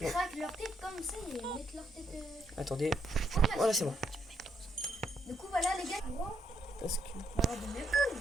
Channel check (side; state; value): both; normal; correlation 0.75